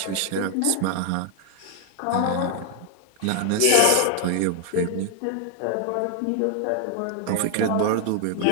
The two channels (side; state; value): both; different; correlation 0.00